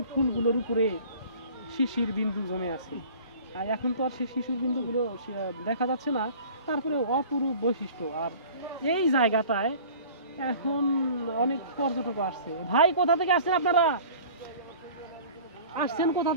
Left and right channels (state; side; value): inverted; both; correlation -0.45